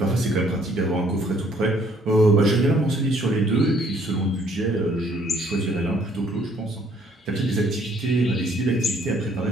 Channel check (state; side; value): normal; both; correlation 0.63